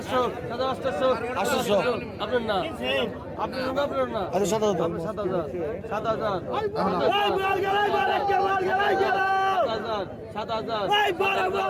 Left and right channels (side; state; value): both; identical; correlation 1.00